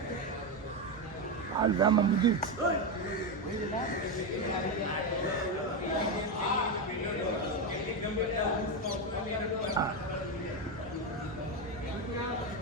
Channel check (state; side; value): normal; both; correlation 0.10